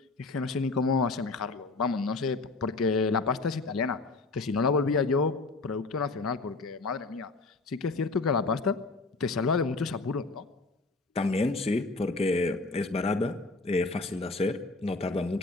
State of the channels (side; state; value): right; quieter; 3.6 dB